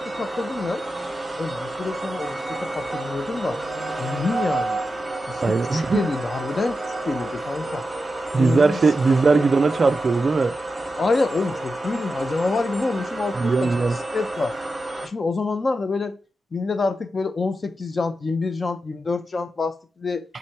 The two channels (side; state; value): both; normal; correlation 0.89